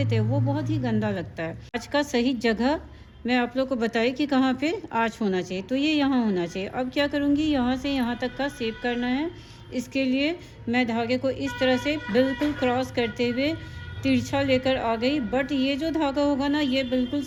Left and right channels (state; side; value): identical; both; correlation 1.00